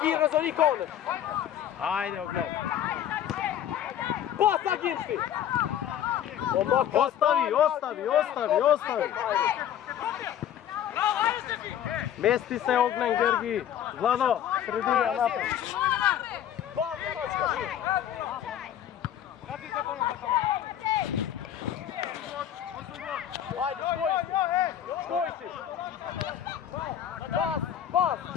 Razon i Koner. Ajde, ogled. Pas, Aginci! Ostavi. Mesti se Ognjen, Georgi. Vlado, sredina napred. Ba, Vjeročka, živ! Ajde, škoj si! Pas!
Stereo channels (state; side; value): quieter; right; 10.4 dB